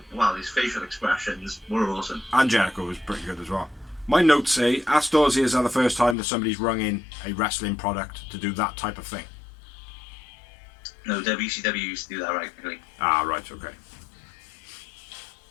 well. His facial expressions were awesome. And Jericho was pretty good as well. My notes say, Ask Dorsey is the first time that somebody's rung in a wrestling product to do that type of thing. No, WCW used to do that regularly. Ah, right, okay.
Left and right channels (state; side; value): drops out; right; at 6.2 s